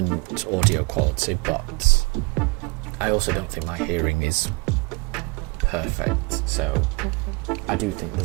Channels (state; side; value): quieter; left; 27.8 dB